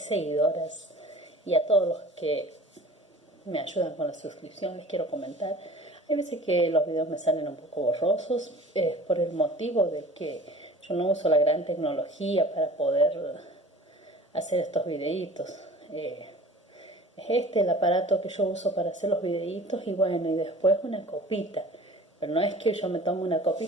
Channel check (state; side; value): normal; both; correlation 0.44